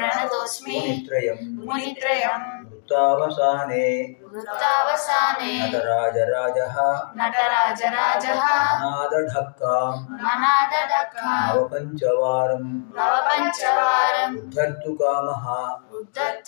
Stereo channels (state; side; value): silent; right; digital silence